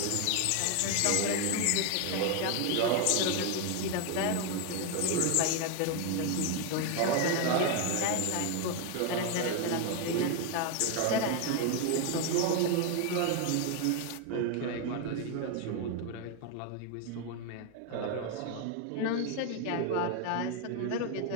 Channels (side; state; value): both; different; correlation 0.01